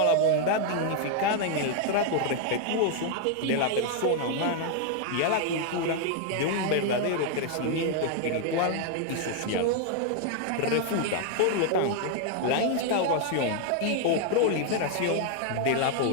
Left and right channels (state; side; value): different; both; correlation 0.00